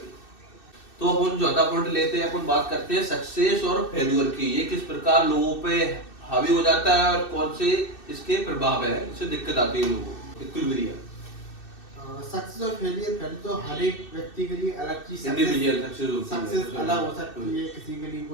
तो अपन चौथा पॉइंट लेते हैं, अपन बात करते हैं सक्सेस और फेल्यूर की। ये किस प्रकार लोगों पे हावी हो जाता है और कौन से इसके प्रभाव है, इससे दिक्कत आती है लोगों को। सक्सेस और फेलियर पहले तो हर एक व्यक्ति के लिए अलग चीज, इंडिविजुअल सक्सेस अलग हो सकती है, किसी के लिए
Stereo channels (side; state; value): right; late; 2.6 ms